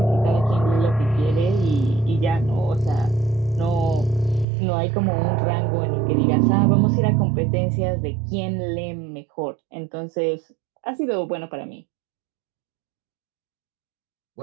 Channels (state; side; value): drops out; left; at 4.5 s